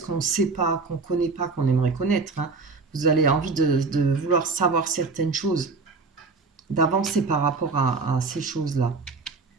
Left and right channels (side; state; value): left; quieter; 4.2 dB